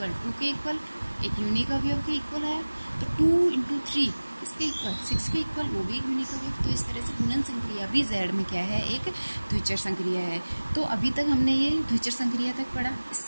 2 के इक्वल, एक यूनिक अवयव के इक्वल है। तो 2 × 3 किसके इक्वल, 6 के इक्वल, वो भी एक यूनिक अवयव। तो इस तरह से गुणन संक्रिया भी जेड में क्या है, एक द्विचर संक्रिया है। तो अभी तक हमने ये द्विचर संक्रिया तक पढ़ा।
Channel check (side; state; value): both; inverted; correlation -1.00